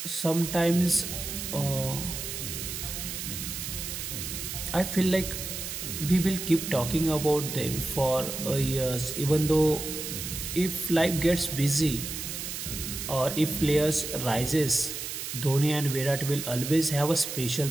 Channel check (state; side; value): noise; right; hiss, 6 dB below the sound